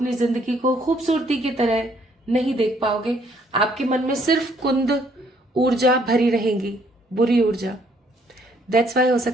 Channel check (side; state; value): both; normal; correlation 0.66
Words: जिंदगी को खूबसूरती की तरह नहीं देख पाओगे। आपके मन में सिर्फ कुंद ऊर्जा भरी रहेगी, बुरी ऊर्जा। दैट्स वाई हो